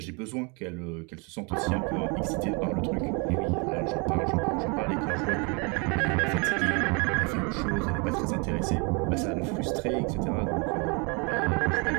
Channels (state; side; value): quieter; left; 31.8 dB